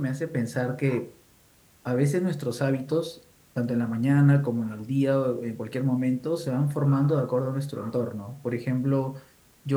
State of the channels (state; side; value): identical; both; correlation 1.00